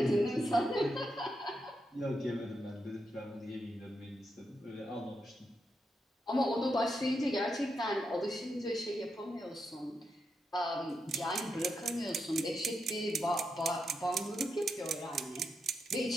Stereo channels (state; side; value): normal; both; correlation 0.84